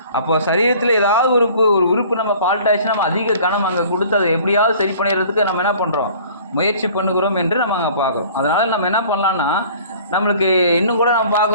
அப்போ சரீரத்தில் ஏதாவது ஒரு உறுப்பு நம்ம ஃபால்ட் ஆயிடுச்சுன்னா நம்ம அதிக கனம் அங்கே கொடுத்து அதை எப்படியாவது சரி பண்ணிடுறதுக்கு நம்ம என்ன பண்ணுறோம், முயற்சி பண்ணுகிறோம் என்று நம்ம அங்கே பார்க்குறோம். அதனால் நம்ம என்ன பண்ணலான்னா, நம்மளுக்கு இன்னும் கூட நம்ம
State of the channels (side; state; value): both; inverted; correlation -0.49